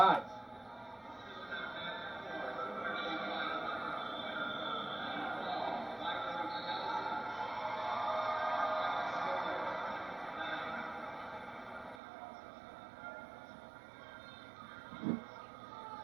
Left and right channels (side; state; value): left; drops out; at 12.0 s